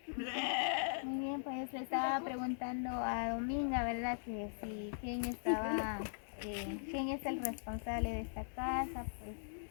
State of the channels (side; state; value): right; silent; digital silence